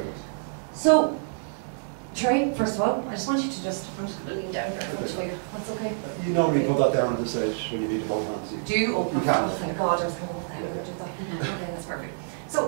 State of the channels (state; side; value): silent; left; digital silence